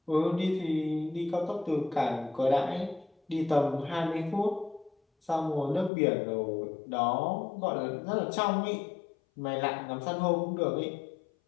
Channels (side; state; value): right; drops out; at 5.9 s